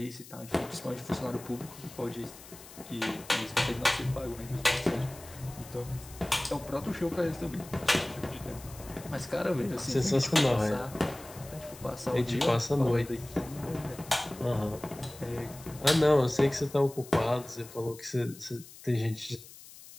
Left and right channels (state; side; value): noise; left; hiss, 18 dB below the sound